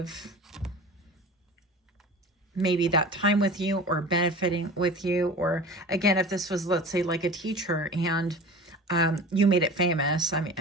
maybe that time with you or benefiting with you. Or again, if this was, let's say, like a teacher and you made it famous. I mean,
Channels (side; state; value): both; normal; correlation 0.37